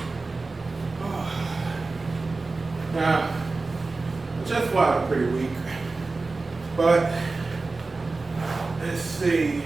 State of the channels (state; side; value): quieter; left; 3.7 dB